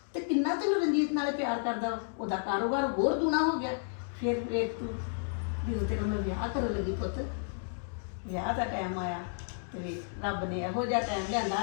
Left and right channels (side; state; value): right; silent; digital silence